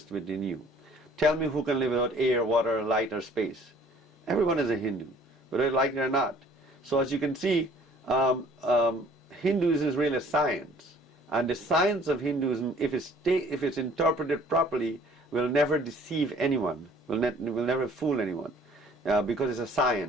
within you. Tell me who can live without air, water, light, or space. Everyone is a Hindu, whether they like it or not. So as you can see, Hinduism is really a science. And the science of Hinduism, if it's interpreted properly, will never deceive anyone, will never fool anyone, because it's a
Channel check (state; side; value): normal; both; correlation 0.54